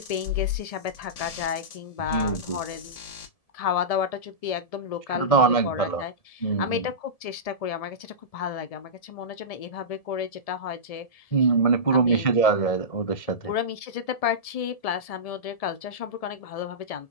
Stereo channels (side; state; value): right; late; 1.7 ms